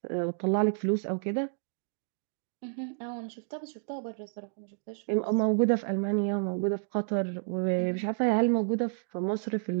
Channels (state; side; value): silent; left; digital silence